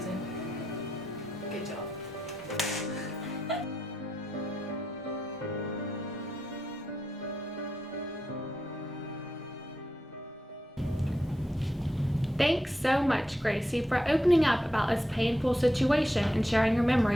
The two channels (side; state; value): both; normal; correlation 0.85